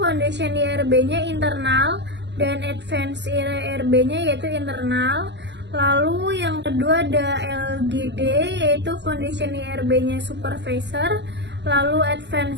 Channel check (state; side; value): late; left; 0.51 ms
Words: IRB-nya internal dan advance IRB-nya yaitu internal. Lalu yang kedua ada LGD, yaitu foundation IRB-nya supervisor, lalu